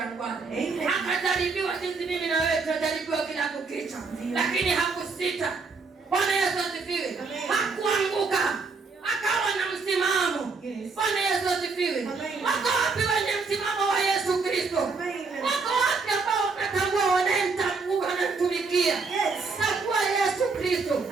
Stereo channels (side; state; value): left; quieter; 4.4 dB